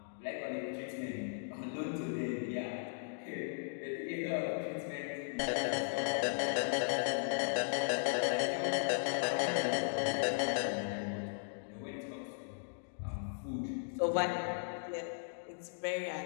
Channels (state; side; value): silent; right; digital silence